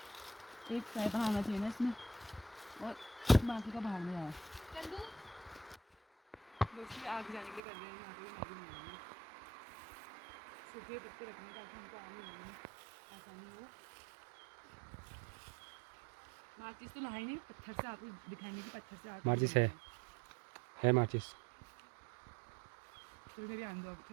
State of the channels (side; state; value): left; drops out; at 7.6 s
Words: एक साइड आना चाहिए ना इसमें और बाकी का बाहर में आया। दोस्ती आग जाने के लिए कर रहे हैं। यहाँ पे मैगी बनाएंगे। सूखे पत्ते रखने ताकि हमको आग नहीं लगेगी। आसानी हो। माचिस तो लाई नहीं, पत्थर से आपको दिखाएंगे कि पत्थर से आग माचिस कैसे है माचिस। तो मेरी आंदो अब